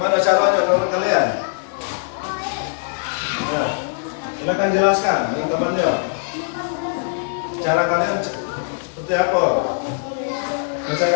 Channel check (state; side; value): silent; right; digital silence